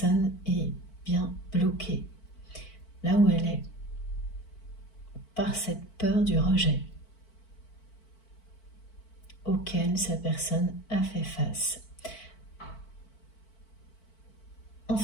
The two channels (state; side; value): late; right; 4.5 ms